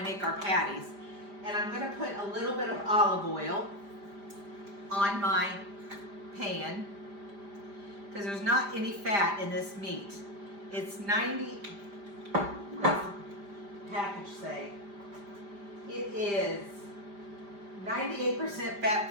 our patties. And I'm going to put a little bit of olive oil on my pan because there's not any fat in this meat. It's 90, what's the package say? It is 98%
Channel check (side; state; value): left; late; 5.0 ms